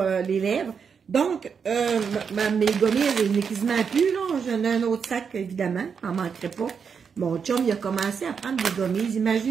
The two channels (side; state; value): left; quieter; 6.4 dB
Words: lèvres. Donc, mes gommises, il n'est quasiment plus, là. J'en ai un autre sac, évidemment, j'en manquerai pas. Mon chum, il a commencé à prendre des gommises,